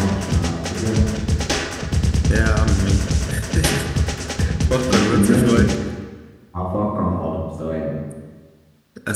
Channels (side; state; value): both; identical; correlation 1.00